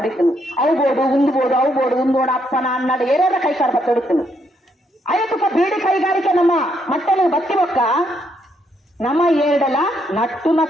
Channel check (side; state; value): both; normal; correlation 0.74